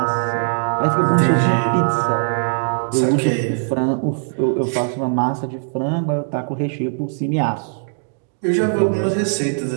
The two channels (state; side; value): silent; left; digital silence